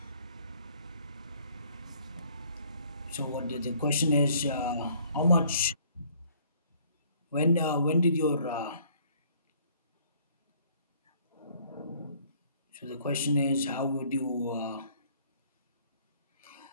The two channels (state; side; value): inverted; both; correlation -0.60